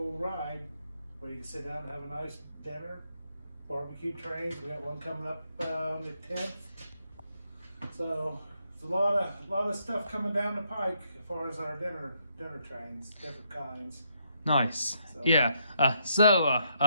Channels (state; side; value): inverted; both; correlation -0.76